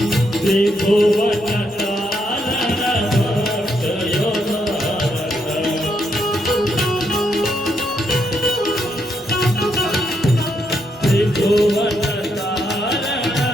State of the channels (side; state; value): both; normal; correlation 0.78